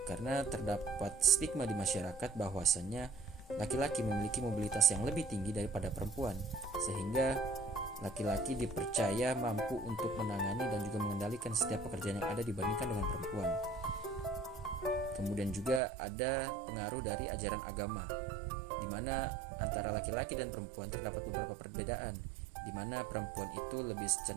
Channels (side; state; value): left; drops out; at 15.8 s